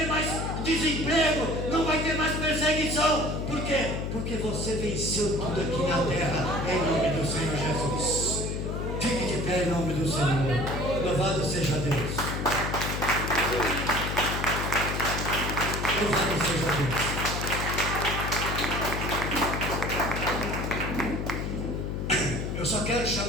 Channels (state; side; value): noise; left; hum, 3 dB below the sound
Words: mais desemprego, não vai ter mais perseguição. Por quê? Porque você venceu tudo aqui na terra, em nome do Senhor Jesus. Fique de pé em nome do Senhor. Louvado seja Deus. Louvado seja Deus. Eu só quero